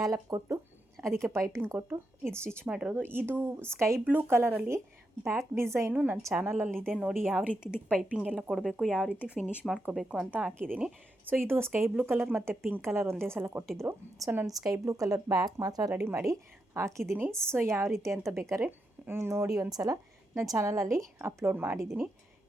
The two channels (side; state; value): both; normal; correlation 0.84